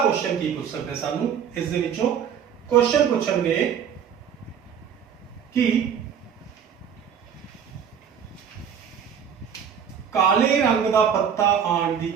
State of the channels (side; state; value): left; quieter; 7.9 dB